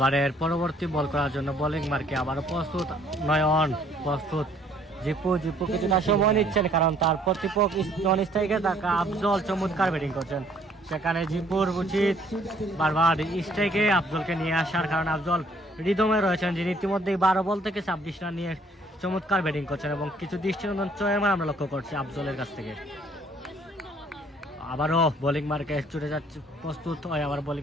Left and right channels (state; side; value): normal; both; correlation 0.61